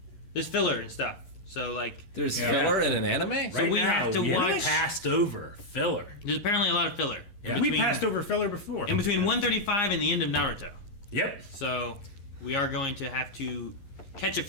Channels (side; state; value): right; late; 11 ms